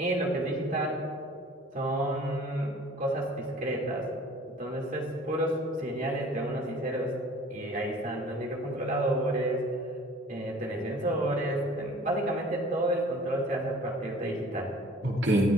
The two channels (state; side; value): normal; both; correlation 0.50